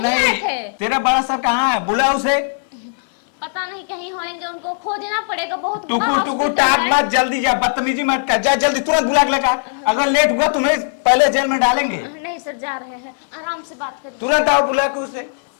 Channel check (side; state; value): right; silent; digital silence